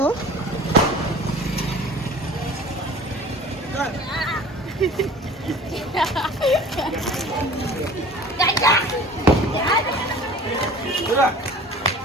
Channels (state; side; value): normal; both; correlation 0.44